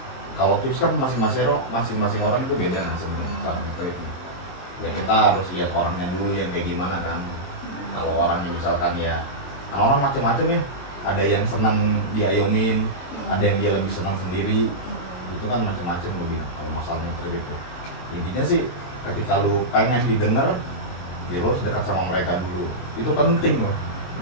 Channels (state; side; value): late; right; 22 ms